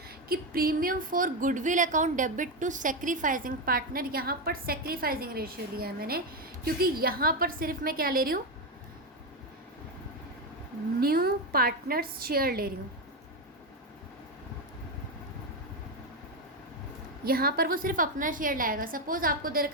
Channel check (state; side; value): normal; both; correlation 0.09